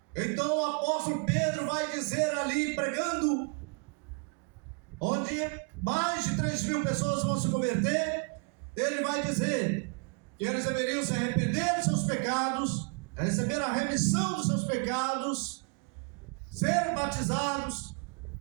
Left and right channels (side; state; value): left; quieter; 37.5 dB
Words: então o apóstolo Pedro vai dizer ali, pregando, onde mais de 3.000 pessoas vão se converter, ele vai dizer que eles deveriam se arrepender dos seus pecados, receber a remissão dos seus pecados, ser batizados